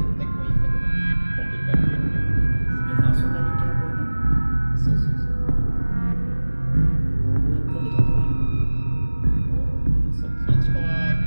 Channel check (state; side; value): inverted; both; correlation -1.00